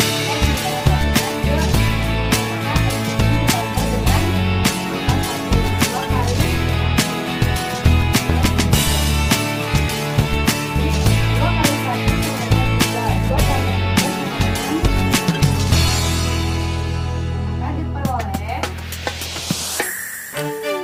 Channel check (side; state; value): both; identical; correlation 1.00